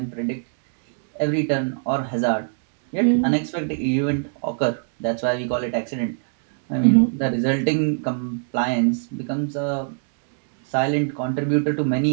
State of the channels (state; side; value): silent; left; digital silence